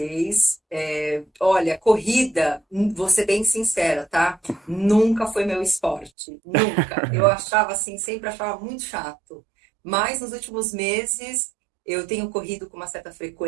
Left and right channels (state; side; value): drops out; left; at 6.1 s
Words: Olha, corrida, vou ser bem sincera, tá? Nunca foi meu esporte, nunca. Eu achava assim, sempre achava muito chato. Mas nos últimos meses eu tenho corrido com uma certa